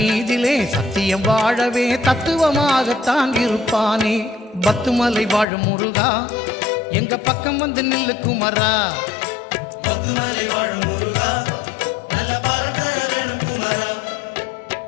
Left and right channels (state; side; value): drops out; right; at 5.5 s